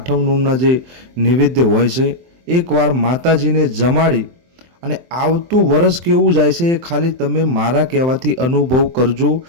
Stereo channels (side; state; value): left; late; 23 ms